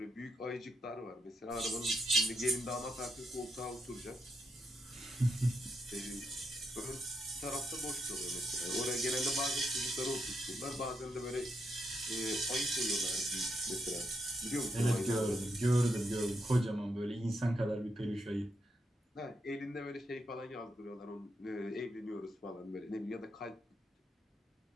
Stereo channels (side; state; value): both; normal; correlation 0.81